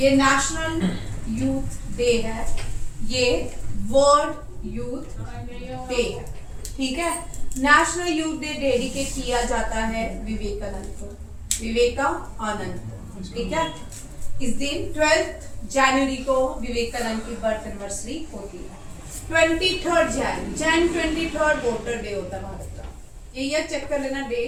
ये नेशनल यूथ डे है, ये वर्ल्ड यूथ डे है, ठीक है। नेशनल यूथ डे डेडिकेट किया जाता है विवेकानंद को, विवेकानंद को, ठीक है। इस दिन 12 जनवरी को विवेकानंद की बर्थ एनिवर्सरी होती है। 23 जैन 23 वोटर डे होता है भारत का, ये ईयर चेक कर लेना, डे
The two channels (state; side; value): identical; both; correlation 1.00